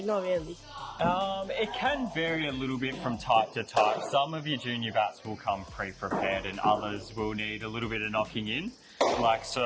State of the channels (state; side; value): identical; both; correlation 1.00